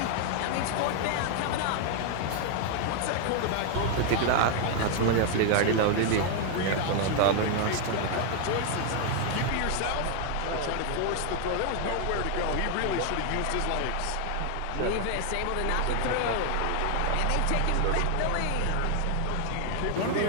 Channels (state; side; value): different; both; correlation 0.00